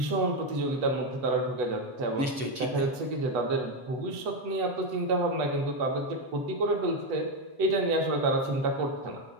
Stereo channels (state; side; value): late; left; 7.5 ms